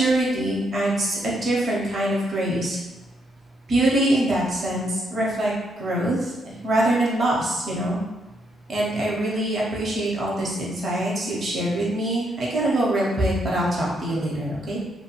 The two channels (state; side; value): normal; both; correlation 0.76